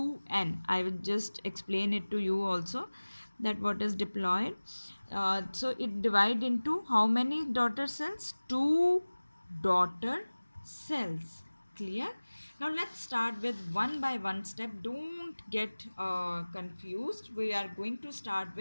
I will just explain it to you also, that what is diploid. So it divide into how many daughter cells? 2 daughter cells. Clear? Now let's start with one by one step. Don't get confused. We are going to start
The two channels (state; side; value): inverted; both; correlation -1.00